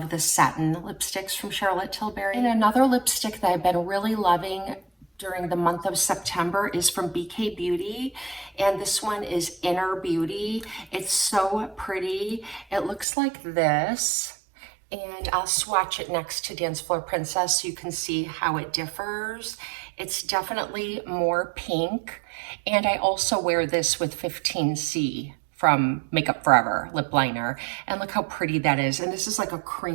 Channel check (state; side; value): drops out; left; at 13.1 s